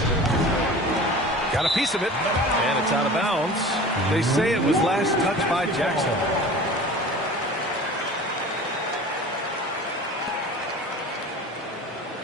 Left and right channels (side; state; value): both; normal; correlation 0.39